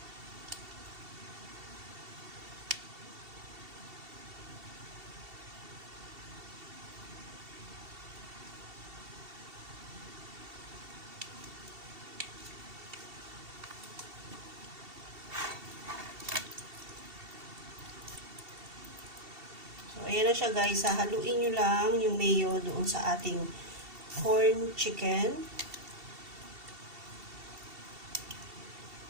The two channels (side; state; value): left; late; 2.7 ms